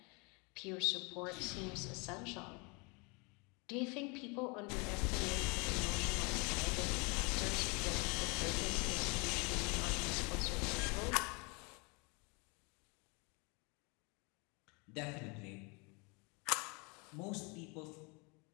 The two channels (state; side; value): quieter; right; 30.7 dB